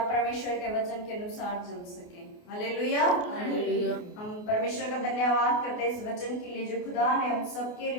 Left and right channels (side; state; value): right; late; 28 ms